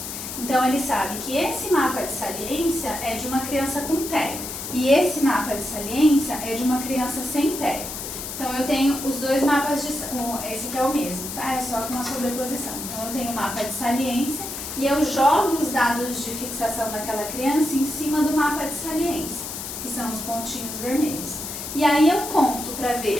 Então ele sabe que esse mapa de saliência é de uma criança com TEA, e esse mapa de saliência é de uma criança sem TEA. Então eu tenho os dois mapas esse aqui é o mesmo, tá? É só com uma sobreposição. Então eu tenho o mapa de saliência e eu jogo os dados de fixação daquela criança em cima do mapa de saliência, que são os pontinhos vermelhos. E aí eu conto para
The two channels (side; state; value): left; noise; hiss, 7 dB below the sound